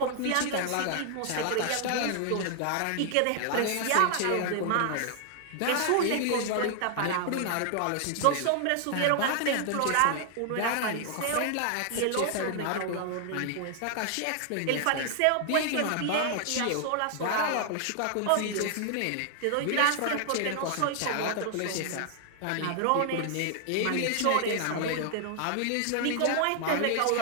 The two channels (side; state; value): both; different; correlation 0.00